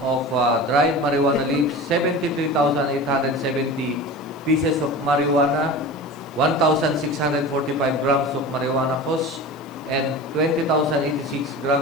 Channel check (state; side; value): noise; left; hiss, 29 dB below the sound